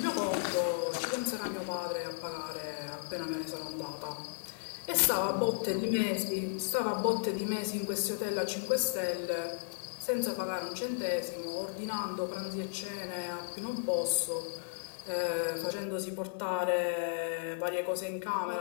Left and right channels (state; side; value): silent; right; digital silence